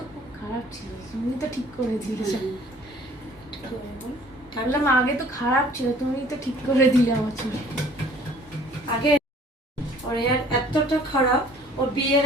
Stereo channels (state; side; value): normal; both; correlation 0.53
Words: খুব খারাপ ছিল, তুমি তো ঠিক করে দিলে। বললাম আগে তো খারাপ ছিল, তুমি তো ঠিক করে দিলে আমার চুল। আগে ওর হেয়ার এতটা খারাপ, ও বিয়ের